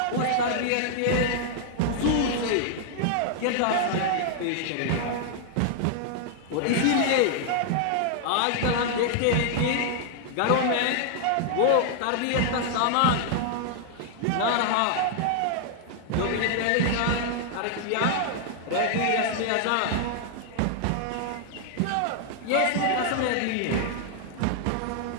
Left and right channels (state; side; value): different; both; correlation -0.01